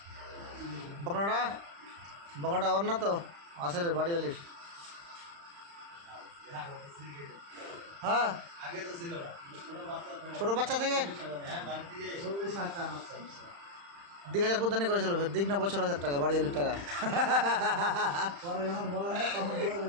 বকনাটা বকনাটা ওর না তো আসলে বাড়িওয়ালির হ্যাঁ আগে তো ছিল না ছোট বাচ্চা থেকে হ্যাঁ বাড়ি থেকে 40,000 টাকা আছে 10,000 কুদ্দানি করেছিল ফের দিক না বছর 1000 টাকা বাড়িওয়ালির টাকা পরে যখন বলা হয় তখন বলে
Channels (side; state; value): left; late; 35 ms